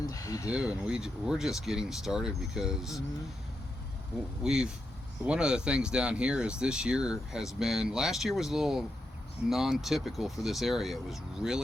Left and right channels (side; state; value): both; normal; correlation 0.85